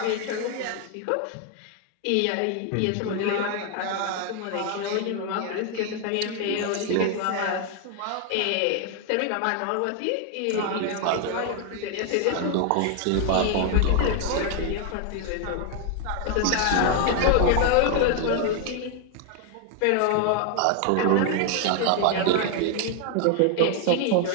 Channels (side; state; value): both; different; correlation 0.01